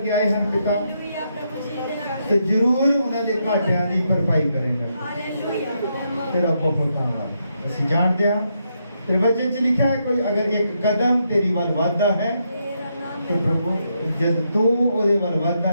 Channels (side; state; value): both; inverted; correlation -0.79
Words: ਆਏ ਹਨ ਪਿਤਾ, ਤੇ ਜ਼ਰੂਰ ਉਹਨਾਂ ਦੇ ਘਾਟਿਆਂ ਦੀ ਭਰਪਾਈ ਕਰੇਗਾ। ਤੇਰਾ ਬਹੁਤ ਧੰਨਵਾਦ। ਅਸੀਂ ਜਾਣਦੇ ਹਾਂ ਤੇ ਵਚਨ 'ਚ ਲਿਖਿਆ ਹੈ ਕੋਈ ਅਗਰ ਇੱਕ ਕਦਮ ਤੇਰੀ ਵੱਲ ਵੱਧਦਾ ਹੈ ਤੇ ਪ੍ਰਭੂ ਜਦ ਤੂੰ ਉਹਦੇ ਵੱਲ ਵੱਧਦਾ